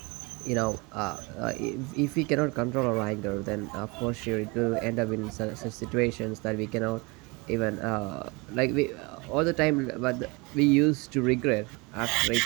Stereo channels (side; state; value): left; quieter; 27.0 dB